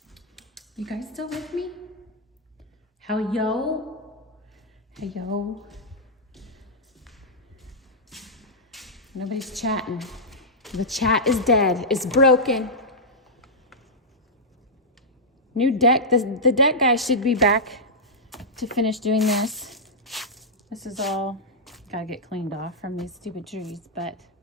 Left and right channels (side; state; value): both; normal; correlation -0.09